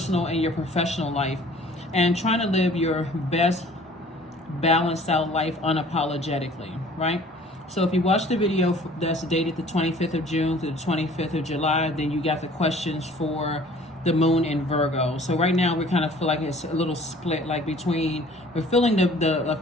and your professional life, and trying to live your best balanced out life unapologetically, right? So if you watch the video that's dated the 25th of June to the 25th of July, then you got the questions for the moon in Virgo. So right now we kind of feel like it's a little split, like between, we're feeling the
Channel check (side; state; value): both; normal; correlation 0.51